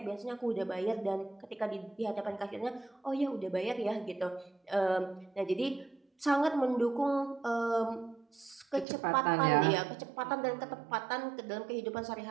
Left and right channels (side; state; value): left; drops out; at 8.8 s